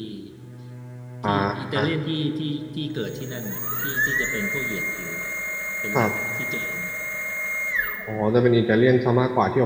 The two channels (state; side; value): identical; both; correlation 1.00